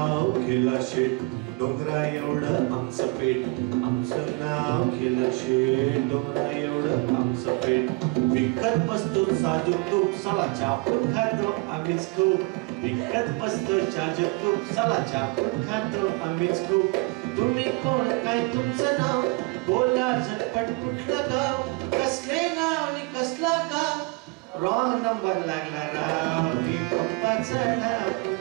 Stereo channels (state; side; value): quieter; left; 26.6 dB